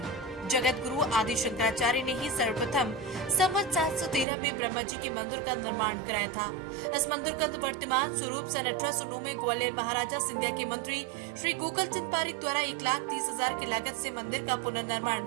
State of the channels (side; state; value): left; drops out; at 4.2 s